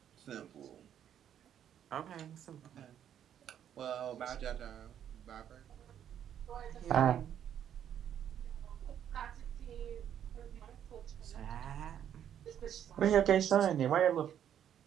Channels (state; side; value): quieter; left; 9.7 dB